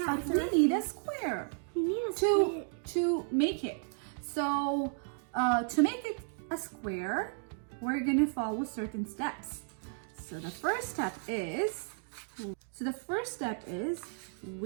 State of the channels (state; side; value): silent; left; 55 dB below the other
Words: But it's a we need a square You need a square. to make it. So to make it a square, we're gonna follow certain steps. So the first step is